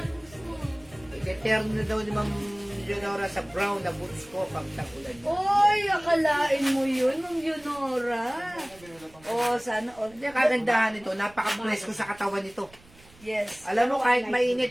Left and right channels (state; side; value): noise; right; rumble, 25 dB below the sound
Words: gusto mo. Iteterno na daw ni Ma'am Leonora sa brown na boots ko pag tagulan. Oy, akalain mo yun, Ma'am Leonora. Oh, sana all. Hindi, kagandahan nito. Napaka-bless ko sa katawan nito. Yes. Alam mo, kahit